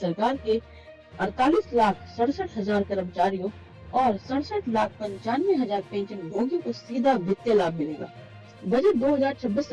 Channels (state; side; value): identical; both; correlation 1.00